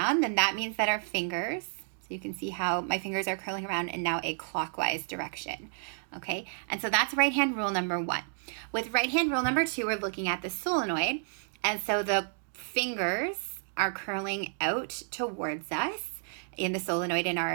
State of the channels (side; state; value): left; silent; digital silence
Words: then that means that our fingers, so you can see how my fingers are curling around in now a clockwise direction, okay? And so that's right hand rule number one. With right hand rule number two, we're looking at the solenoid. And so the fingers are curling out towards us in the solenoid in our